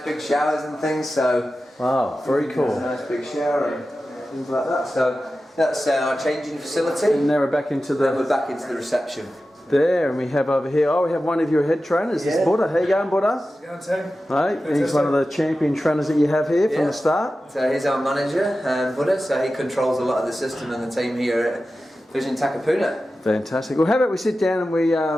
big showers and things. So Wow, very cool. a nice big shower and things like that. So that's our changing facility. And now we're back into Then we're the back into the reception. there, and we have over here. Oh, we have one of your head trainers. This is Buddha. How you going, Buddha? Right, he's one of the champion trainers that you have here from Yeah. the start. So he's our manager, Buddha. So he controls a lot of the system and the team here at Vision Takapuna. Fantastic. Well, how about we sit down and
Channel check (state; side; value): normal; both; correlation 0.94